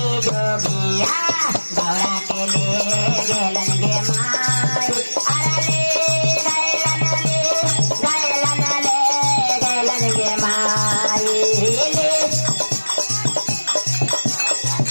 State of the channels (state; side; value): inverted; both; correlation -1.00